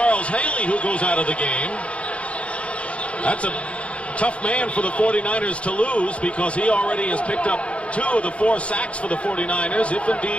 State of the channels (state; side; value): late; right; 0.061 ms